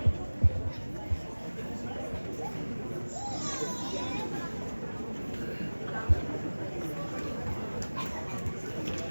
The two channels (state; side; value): inverted; both; correlation -1.00